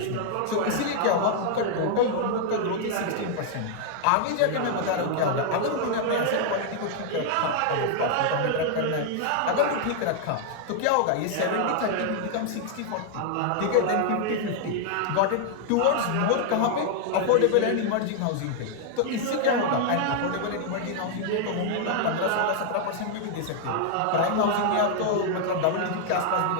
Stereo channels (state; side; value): different; both; correlation 0.00